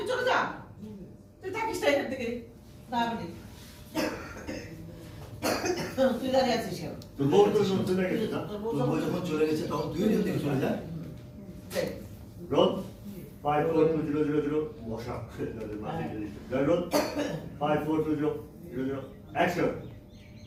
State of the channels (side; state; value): both; identical; correlation 1.00